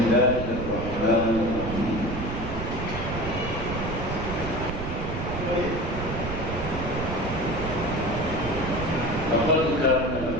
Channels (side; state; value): right; noise; rumble, 5 dB below the sound